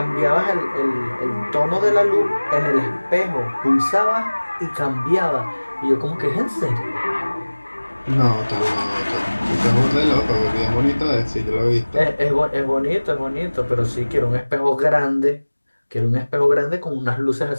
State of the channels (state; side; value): inverted; both; correlation -1.00